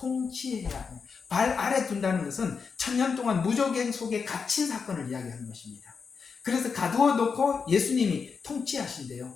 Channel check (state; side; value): quieter; right; 5.6 dB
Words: 한다. 발 아래 둔다는 것은 천년 동안 무적행 속에 갇힌 사건을 이야기하는 것입니다. 그래서 가두어 놓고 예수님이